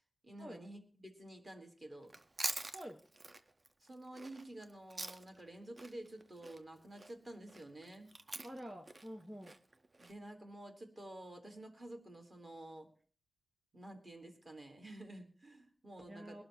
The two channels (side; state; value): both; normal; correlation 0.96